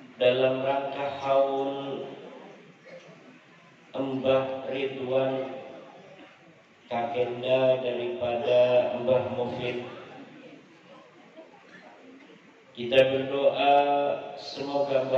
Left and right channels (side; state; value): both; identical; correlation 1.00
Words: dalam rangka haul Mbah Ridwan, kakenda daripada Mbah Mufid. Kita berdoa semoga